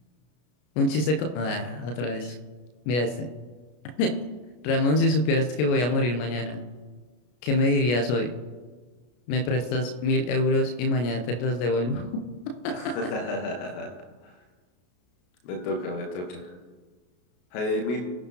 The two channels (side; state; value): right; late; 33 ms